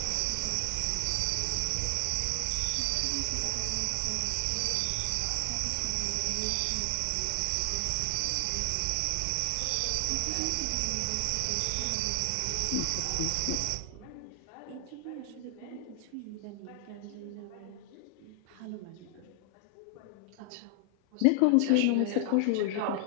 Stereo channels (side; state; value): both; different; correlation 0.00